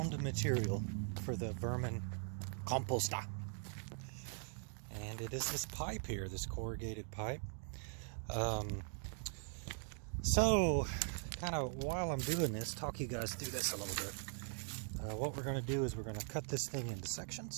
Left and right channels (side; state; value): left; silent; 50 dB below the other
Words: material for the vermin composter, and it is this pipe here, this corrugated pipe. So kind of while I'm doing this, talk you guys through this a little bit. What we're going to do is we're going to cut this thing into